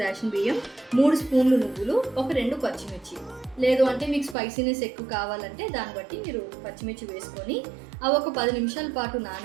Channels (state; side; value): drops out; left; at 4.4 s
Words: రేషన్ బియ్యం, 3 స్పూన్లు నువ్వులు, ఒక 2 పచ్చిమిర్చి. లేదు అంటే మీకు స్పైసీనెస్ ఎక్కువ కావాలంటే దాన్ని బట్టి మీరు పచ్చిమిర్చి వేసుకొని అవి ఒక 10 నిమిషాల పాటు